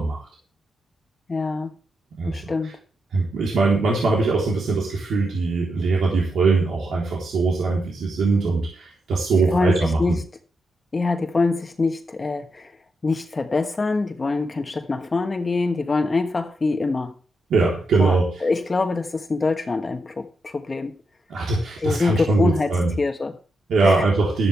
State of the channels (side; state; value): both; normal; correlation 0.84